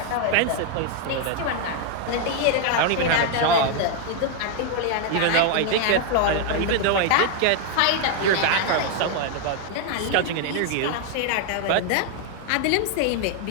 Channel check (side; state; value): both; different; correlation 0.00